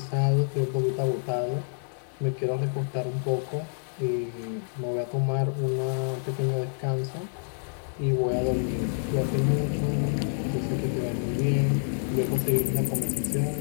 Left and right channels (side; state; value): right; silent; 60 dB below the other